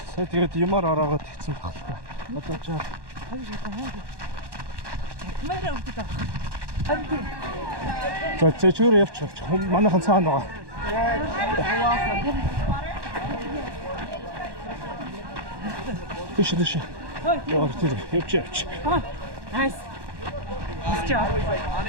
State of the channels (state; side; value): late; left; 1.1 ms